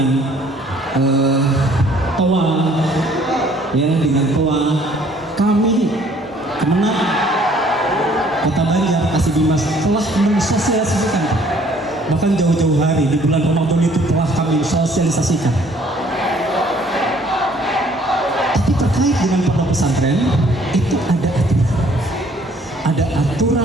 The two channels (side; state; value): both; normal; correlation 0.59